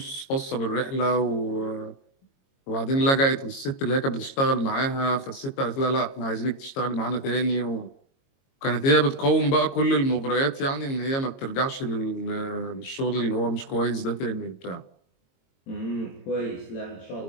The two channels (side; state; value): right; late; 22 ms